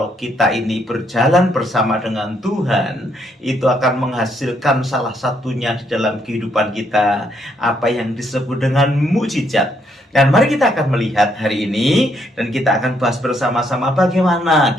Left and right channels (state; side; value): normal; both; correlation 0.73